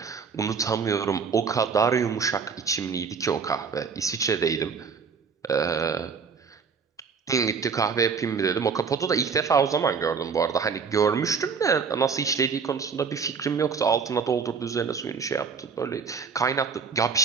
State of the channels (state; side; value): quieter; left; 5.7 dB